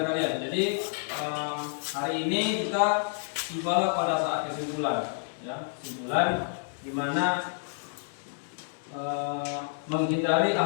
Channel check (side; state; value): right; silent; digital silence